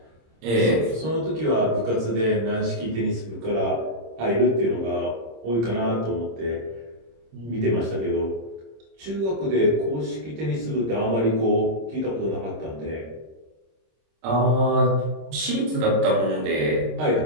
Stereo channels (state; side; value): late; left; 26 ms